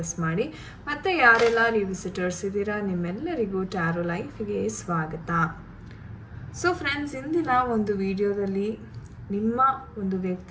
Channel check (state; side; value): identical; both; correlation 1.00